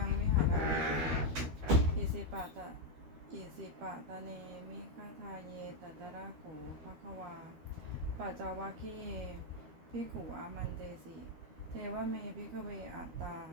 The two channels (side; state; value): left; late; 12 ms